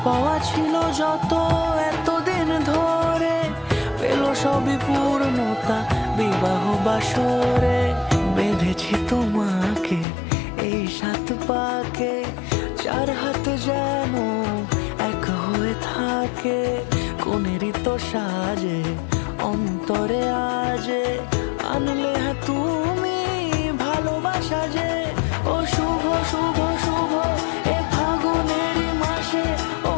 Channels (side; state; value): right; drops out; at 10.1 s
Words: পাওয়া ছিল যত এতদিন ধরে, পেল সবই পূর্ণতা বিবাহ বাসরে। বেঁধেছি তোমাকে এই 7 পাকে, 4 হাত যেন এক হয়ে থাকে। কোনেরই তো সাজে অন্তরে আজে, আনলে হ্যাঁ তুমি ভালোবাসা যে। ও শুভ শুভ শুভ এ ফাগুনের মাসে, ও